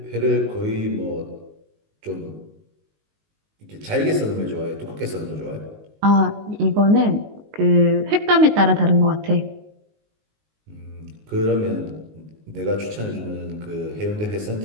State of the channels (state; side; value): late; left; 19 ms